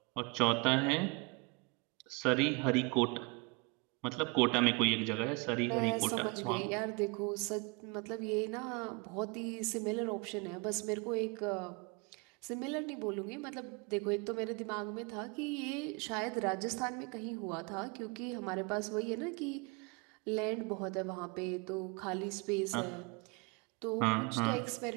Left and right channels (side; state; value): left; quieter; 30.1 dB